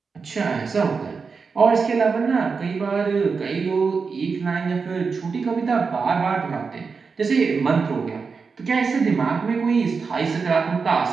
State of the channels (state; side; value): quieter; left; 5.1 dB